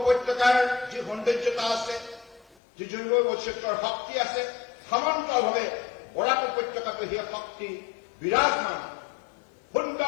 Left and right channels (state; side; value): drops out; right; at 2.6 s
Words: যি সৌন্দৰ্যতা আছে, যি জৈৱ বৈচিত্ৰ্যৰ শক্তি আছে, সমান্তৰালভাৱে বৰাক উপত্যকাটো সেই শক্তি বিৰাজমান।